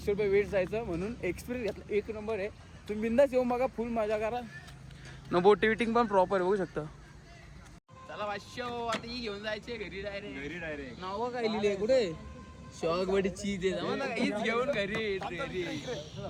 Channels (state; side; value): identical; both; correlation 1.00